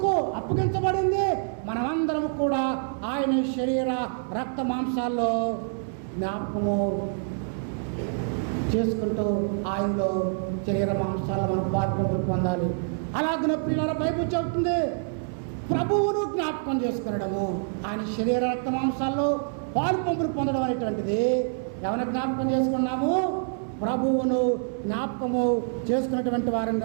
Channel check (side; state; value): left; silent; digital silence